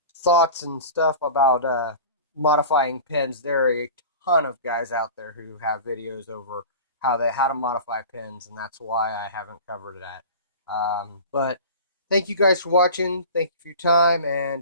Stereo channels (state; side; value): inverted; both; correlation -0.37